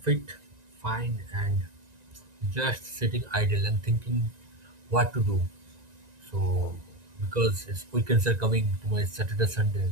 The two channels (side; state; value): left; late; 1.9 ms